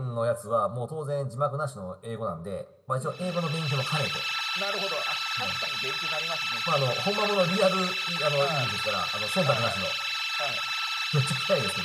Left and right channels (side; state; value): both; identical; correlation 1.00